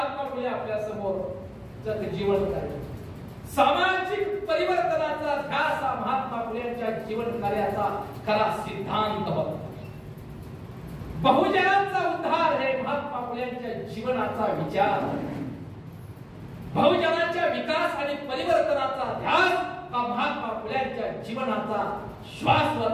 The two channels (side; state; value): both; identical; correlation 1.00